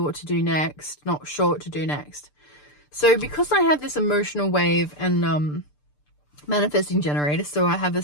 what to do next, not sure what to do next. So because I have this emotional wave and manifesting generator, so I have a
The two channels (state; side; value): late; right; 6.8 ms